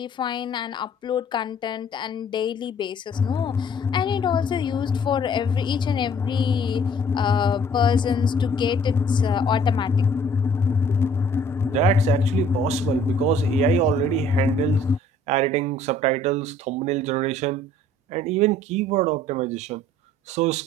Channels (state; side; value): normal; both; correlation 0.56